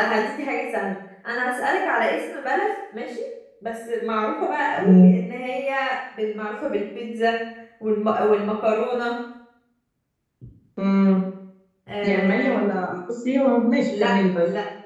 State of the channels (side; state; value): both; identical; correlation 1.00